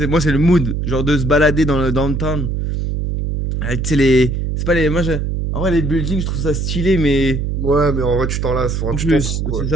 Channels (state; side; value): noise; right; hum, 1 dB below the sound